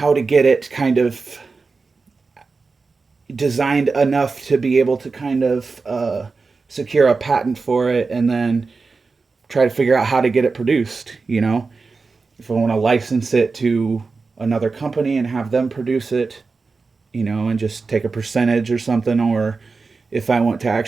to get it kind of designed enough to be able to kind of secure a patent for it, and then try to figure out how to get it produced. If I want to license it to another company and have them produce it, and just take a percentage or something, or if I want to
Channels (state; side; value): quieter; left; 4.3 dB